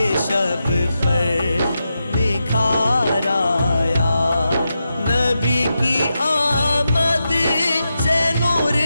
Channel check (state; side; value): inverted; both; correlation -0.88